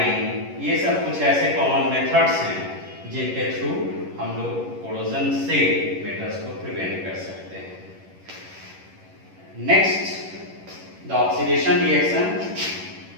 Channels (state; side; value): late; left; 11 ms